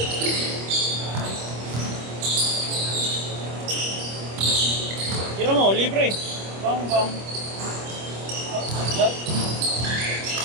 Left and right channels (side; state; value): left; late; 25 ms